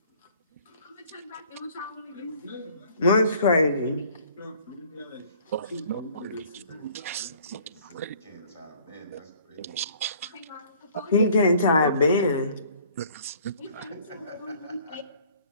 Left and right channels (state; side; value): inverted; both; correlation -0.54